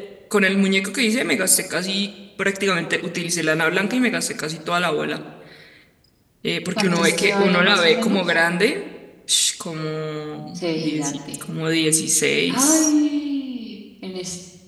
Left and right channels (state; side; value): identical; both; correlation 1.00